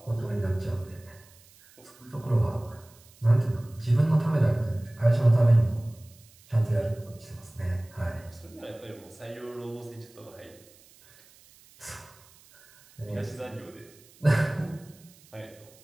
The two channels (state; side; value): noise; right; hiss, 26 dB below the sound